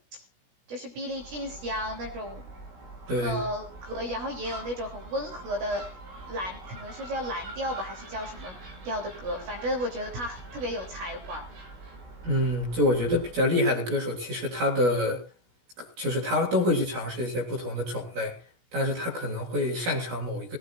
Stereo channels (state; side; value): late; left; 16 ms